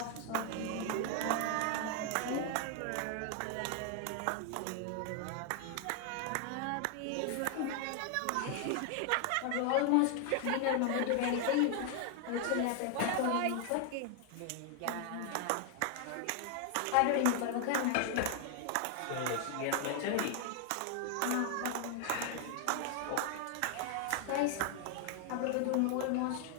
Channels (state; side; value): different; both; correlation 0.00